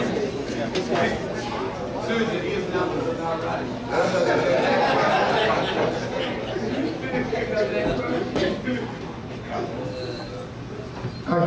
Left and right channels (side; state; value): both; identical; correlation 1.00